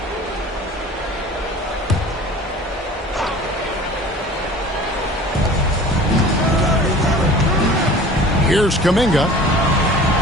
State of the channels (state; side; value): normal; both; correlation 0.43